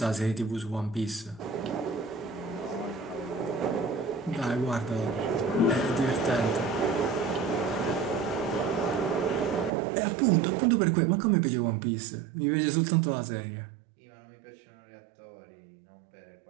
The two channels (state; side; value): drops out; left; at 9.7 s